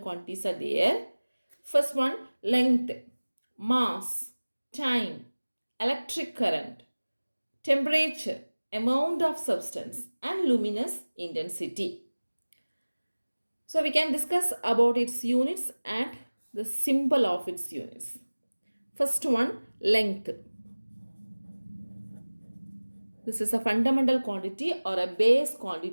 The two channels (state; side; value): inverted; both; correlation -1.00